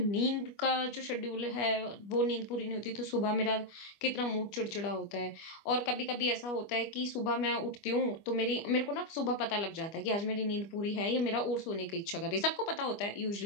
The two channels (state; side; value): late; right; 25 ms